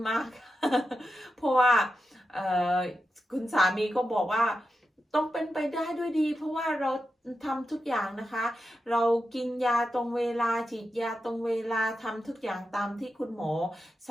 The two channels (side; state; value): both; normal; correlation 0.89